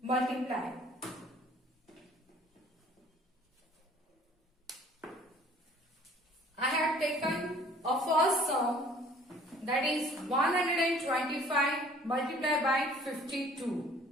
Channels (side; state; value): both; normal; correlation 0.53